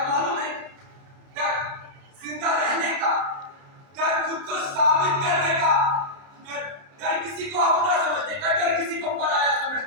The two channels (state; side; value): late; left; 30 ms